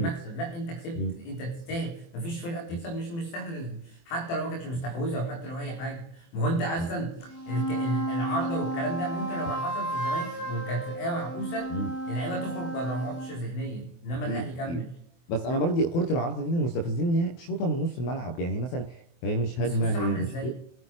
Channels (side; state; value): right; late; 24 ms